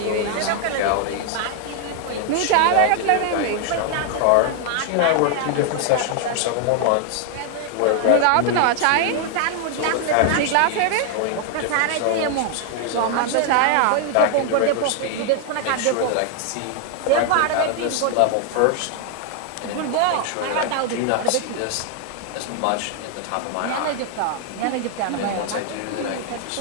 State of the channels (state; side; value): different; both; correlation 0.00